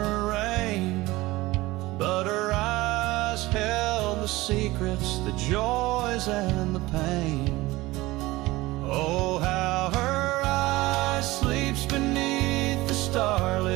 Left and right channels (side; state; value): left; quieter; 19.6 dB